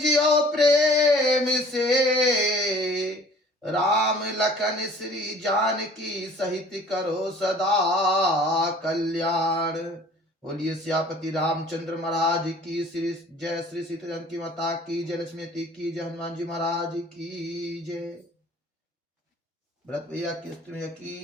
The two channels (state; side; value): normal; both; correlation 0.50